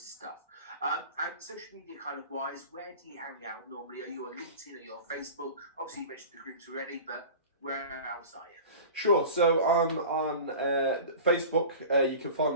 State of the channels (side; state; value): both; inverted; correlation -0.37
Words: stuff. And social media kind of wise, where do you hang out normally? Are you on LinkedIn? Are you on Facebook? Obviously, you mentioned the groups already, but where else are you? Sure. So I'm on Facebook. You can find